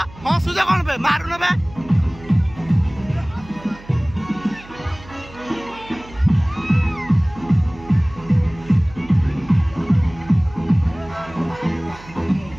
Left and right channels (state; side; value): noise; right; hum, 20 dB below the sound